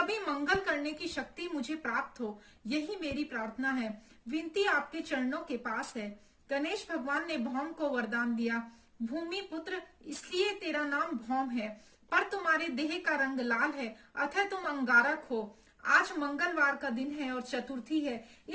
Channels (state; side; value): identical; both; correlation 1.00